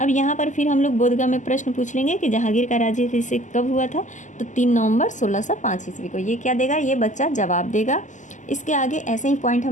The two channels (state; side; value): late; right; 0.36 ms